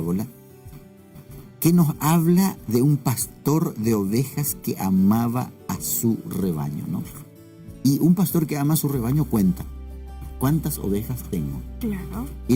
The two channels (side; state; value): both; identical; correlation 1.00